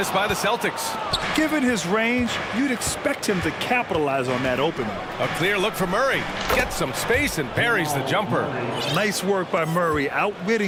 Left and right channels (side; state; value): both; identical; correlation 1.00